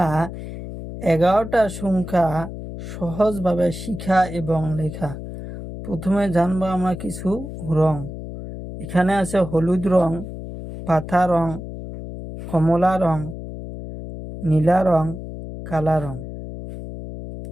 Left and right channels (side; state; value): left; noise; hum, 10 dB below the sound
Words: 11টা সংখ্যা সহজভাবে শিখা এবং লেখা। প্রথমে জানবো আমরা কিছু রং। এখানে আছে হলুদ রং, পাতা রং, কমলা রং, নীলা রং, কালা রং।